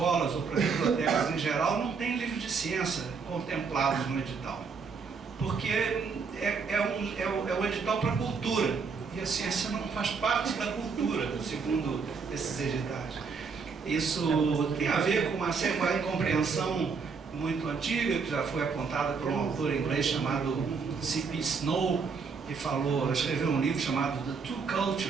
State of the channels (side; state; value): left; quieter; 5.3 dB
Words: ou para as bibliotecas em geral, não tem livro de ciência contemplados no edital. Porque é um edital para a cultura, e a ciência não faz parte da cultura, segundo esses editais. Isso tem a ver com uma incompreensão muito antiga, que já foi apontada por um autor inglês chamado C.P. Snow, que escreveu um livro chamado The Two